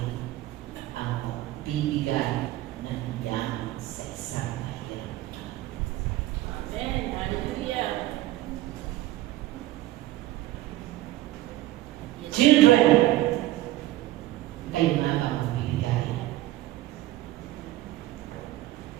ang pagbibigay ng yaman sa isang kahirap. Amen. Hallelujah. Children, kayo nga ba magbibigay?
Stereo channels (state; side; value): quieter; left; 15.9 dB